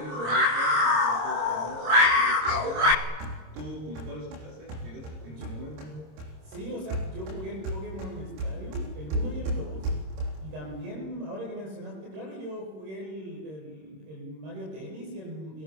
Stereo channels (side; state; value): left; late; 26 ms